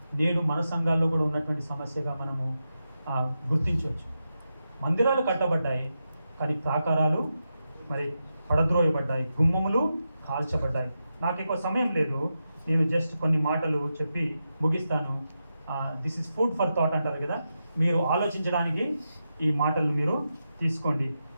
నేడు మన సంఘాల్లో కూడా ఉన్నటువంటి సమస్యగా మనము గుర్తించవచ్చు. మందిరాలు కట్టబడ్డాయి, కానీ ప్రాకారాలు మరి పడద్రోయబడ్డాయి, గుమ్మములు కాల్చబడ్డాయి. నాకు ఎక్కువ సమయం లేదు, నేను జస్ట్ కొన్ని మాటలు చెప్పి ముగిస్తాను. This is food for thought అంటారు కదా, మీరు ఆలోచించడానికి ఈ మాటలు మీరు తీసుకోండి.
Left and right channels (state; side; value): inverted; both; correlation -0.88